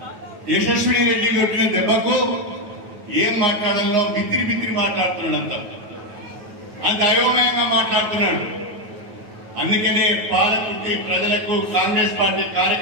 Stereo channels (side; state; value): left; late; 9.2 ms